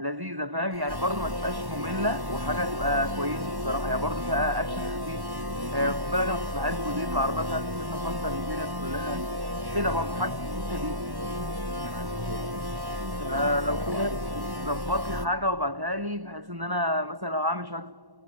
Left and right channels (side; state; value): left; late; 1.1 ms